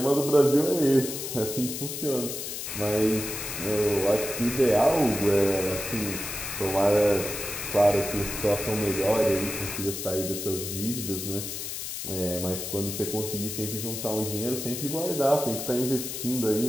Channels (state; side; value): noise; left; hiss, 6 dB below the sound